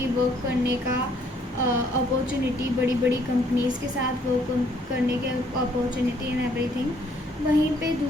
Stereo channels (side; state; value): both; normal; correlation 0.65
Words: वर्क करने का अपॉर्चुनिटी, बड़ी बड़ी कंपनीज़ के साथ वर्क करने के अपॉर्चुनिटी एंड एवरीथिंग, वहीं पे